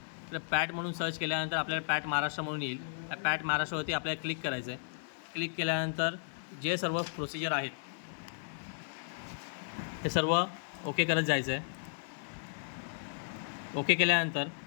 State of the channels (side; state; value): right; silent; 55 dB below the other